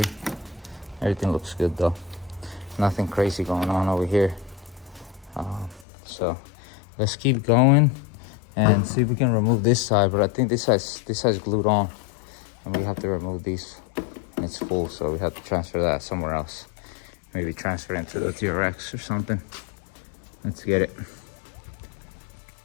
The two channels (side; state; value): right; drops out; at 5.9 s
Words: Everything looks good though. Nothing crazy going on over here. So let's keep going and see if we can remove this side. But I think this side's glued on, and we have to remove these, and it's full, so we have to transfer that somewhere else. Maybe transfer it into the TRX or something. Let's get it.